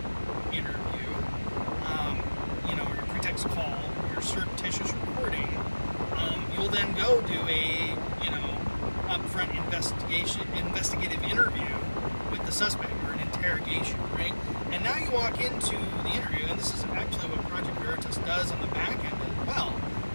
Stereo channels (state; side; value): inverted; both; correlation -1.00